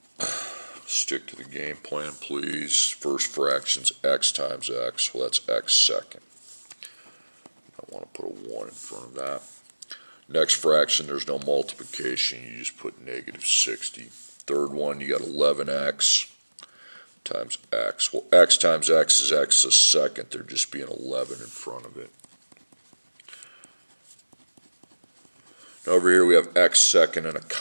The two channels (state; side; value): inverted; both; correlation -1.00